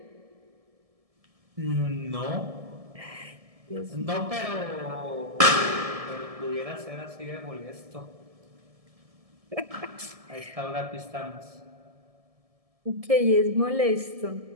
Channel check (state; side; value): late; left; 1.7 ms